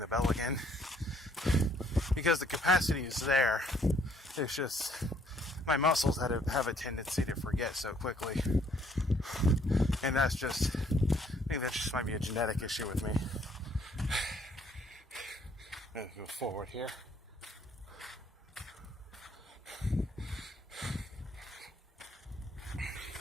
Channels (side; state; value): both; normal; correlation 0.65